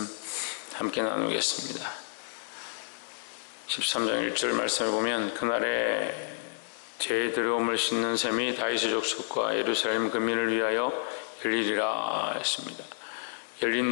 함께 나누겠습니다. 13장 1절 말씀을 보면 그날에 제 들어옴을 씻는 셈이 다윗의 족속과 예루살렘 근민을 위하여 열리리라 했습니다.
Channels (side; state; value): right; silent; digital silence